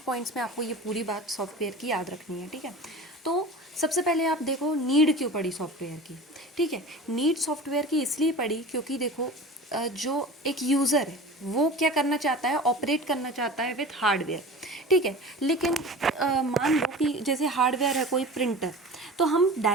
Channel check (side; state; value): both; normal; correlation 0.36